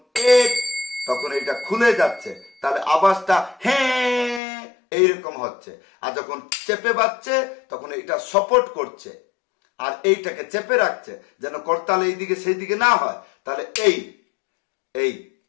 1 তখন এটা খুলে যাচ্ছে, তাহলে আওয়াজটা হ্যাঁ এইরকম হচ্ছে। আর যখন চেপে বাজছে তখন এটা সাপোর্ট করছে আর এইটাকে চেপে রাখছে যেন করতাল এইদিকে সেই দিকে না হয়। তাহলে এই এই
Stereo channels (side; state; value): right; drops out; at 4.4 s